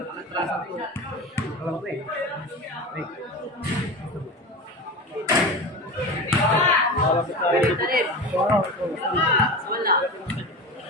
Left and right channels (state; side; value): normal; both; correlation 0.28